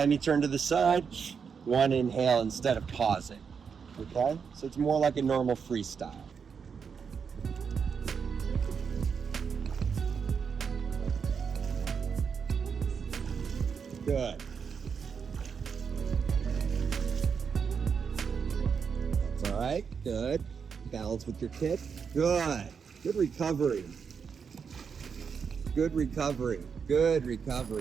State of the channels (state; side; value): quieter; left; 6.3 dB